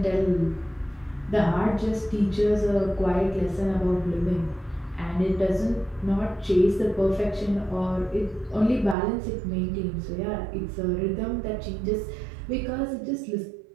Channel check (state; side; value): drops out; left; at 9.0 s